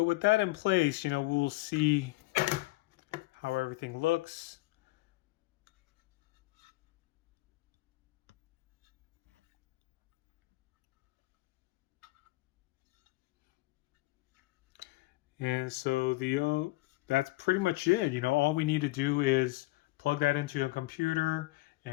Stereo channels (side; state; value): right; quieter; 20.6 dB